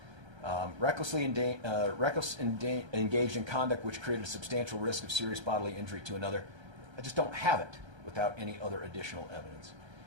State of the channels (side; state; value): left; late; 1.3 ms